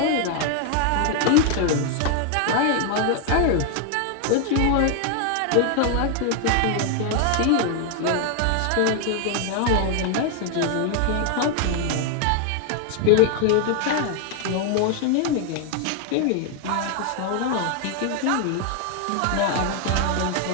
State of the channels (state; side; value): different; both; correlation 0.00